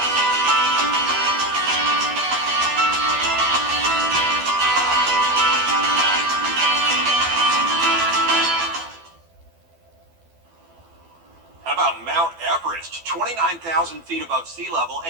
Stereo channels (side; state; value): left; late; 12 ms